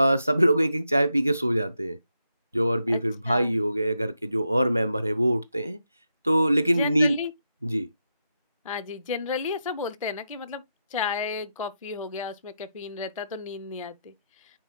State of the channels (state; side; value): inverted; both; correlation -0.85